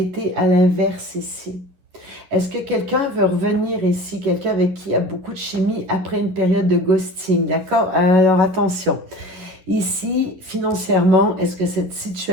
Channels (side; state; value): left; late; 11 ms